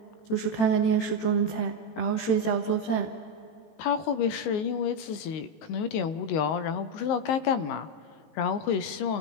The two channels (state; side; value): late; right; 19 ms